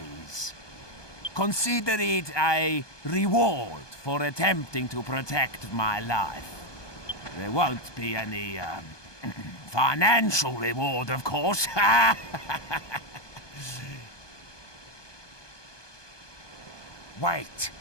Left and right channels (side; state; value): right; late; 1.2 ms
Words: Consider it a reward for attempting to protect my life. There won't be any, financial reward, of course. Wait,